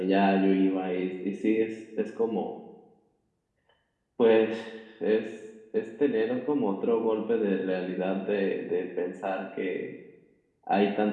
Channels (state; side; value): identical; both; correlation 1.00